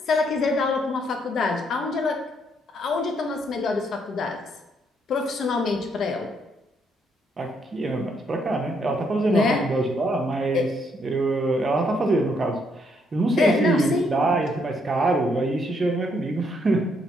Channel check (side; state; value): both; normal; correlation 0.72